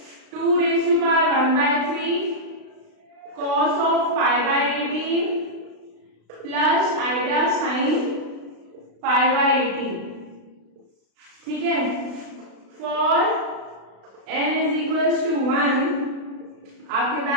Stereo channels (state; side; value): late; left; 36 ms